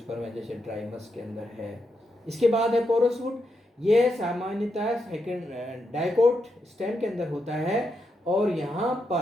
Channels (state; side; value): normal; both; correlation 0.83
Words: है जैसे ट्राइमस के अंदर है। इसके बाद है पोरस वुड। यह सामान्यतः डाइकोट स्टेम के अंदर होता है और यहाँ